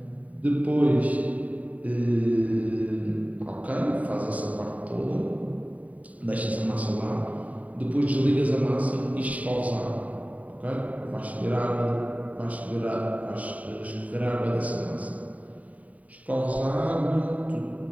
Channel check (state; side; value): late; left; 0.070 ms